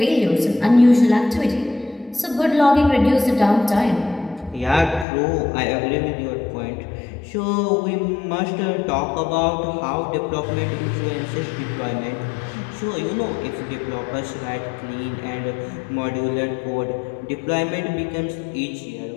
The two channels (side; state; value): right; drops out; at 5.1 s